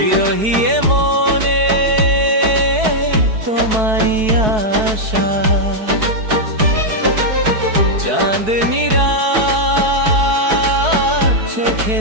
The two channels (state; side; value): late; left; 4.6 ms